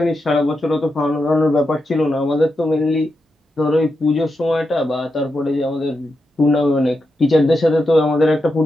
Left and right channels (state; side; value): normal; both; correlation 0.87